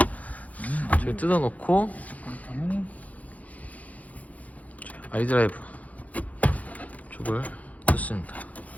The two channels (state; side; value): late; right; 0.072 ms